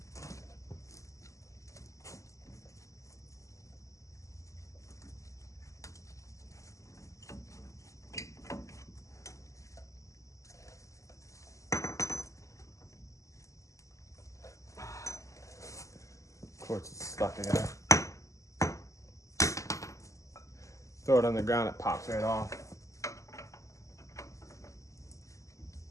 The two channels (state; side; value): late; right; 0.16 ms